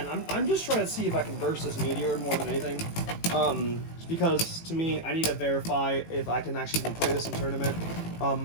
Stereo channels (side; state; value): right; late; 18 ms